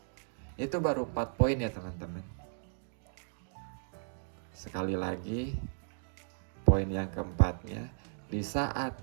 Itu baru 4 poin ya teman-teman. Sekali lagi, poin yang keempatnya, di saat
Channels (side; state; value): left; silent; digital silence